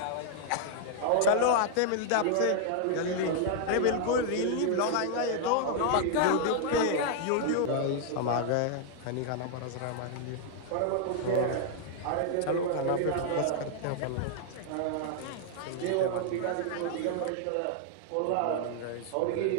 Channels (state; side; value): different; both; correlation 0.00